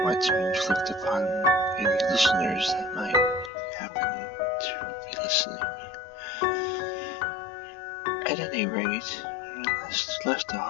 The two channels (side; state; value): right; drops out; at 3.5 s